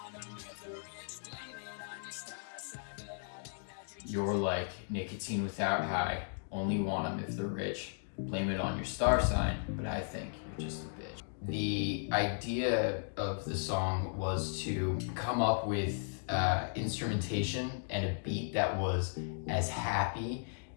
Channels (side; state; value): right; silent; digital silence